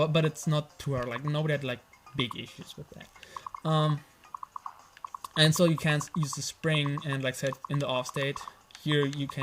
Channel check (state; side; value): identical; both; correlation 1.00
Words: it's not too hard. Like nobody had like big issues with that. And so you can't use the spring, and like I said, in the off state here you